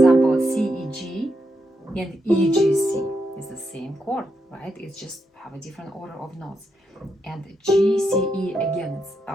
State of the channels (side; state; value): both; normal; correlation 0.82